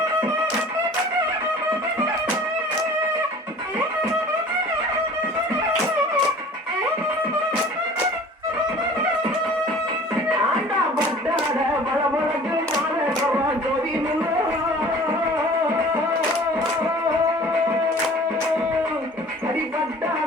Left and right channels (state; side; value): normal; both; correlation 0.46